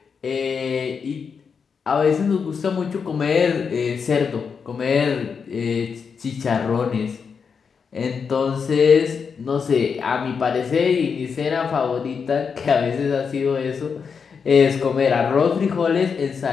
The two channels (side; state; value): right; quieter; 6.0 dB